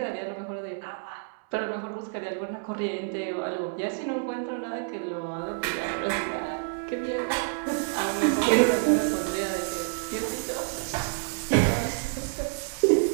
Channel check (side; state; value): left; silent; digital silence